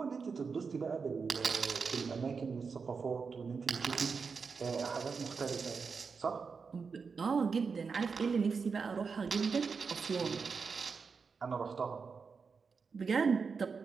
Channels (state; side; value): quieter; left; 5.3 dB